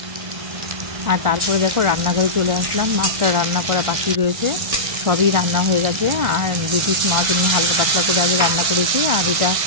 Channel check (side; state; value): left; late; 1.6 ms